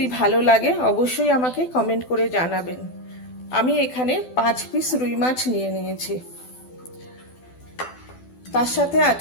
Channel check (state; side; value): late; right; 12 ms